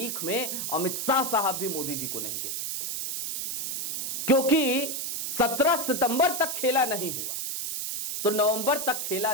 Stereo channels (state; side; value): noise; right; hiss, 3 dB below the sound